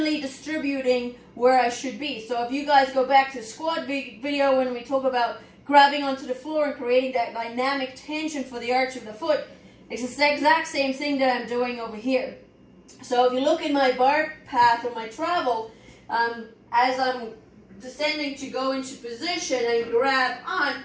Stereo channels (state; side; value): identical; both; correlation 1.00